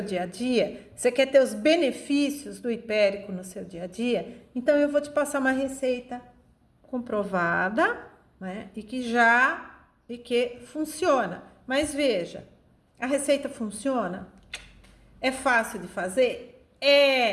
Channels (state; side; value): identical; both; correlation 1.00